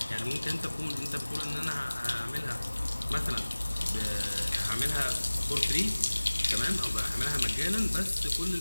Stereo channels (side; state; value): both; inverted; correlation -1.00